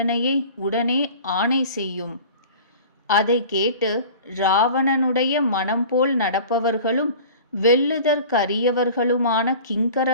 உடனே ஆணை செய்யும். அதை கேட்டு ராவணனுடைய மனம் போல் நடப்பவர்களும் வெல்லுதற்கரியவர்களுமான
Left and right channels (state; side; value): inverted; both; correlation -0.41